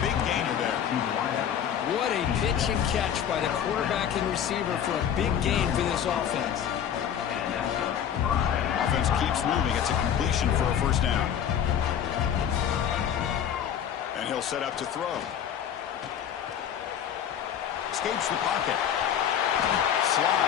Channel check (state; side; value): quieter; right; 9.1 dB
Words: big gainer there. What a pitch and catch by the quarterback and receiver for a big gain for this offense. Offense keeps moving. It's a completion for a first down. And he'll set up to throw. Escapes the pocket.